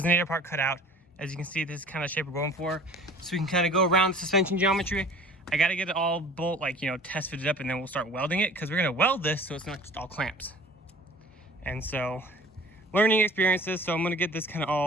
part cut out. As you can see, this is kind of the shape we're going for. So we can kind of go around the suspension geometry. I got to get it all test fitted up, and then we'll start welding it, because we're going to weld this so it's not just all clamps. And so, learning experiences, so I'm going to get this kind of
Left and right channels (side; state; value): both; normal; correlation 0.46